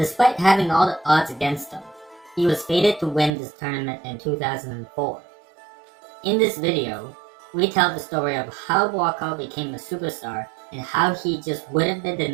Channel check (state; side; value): drops out; left; at 3.3 s